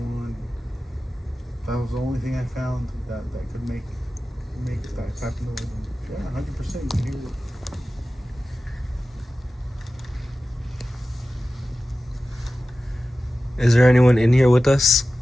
That was the only thing I found that could make that type of noise. Yeah, 100% you can hear it. Is there anyone in here with us?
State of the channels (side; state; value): both; normal; correlation 0.94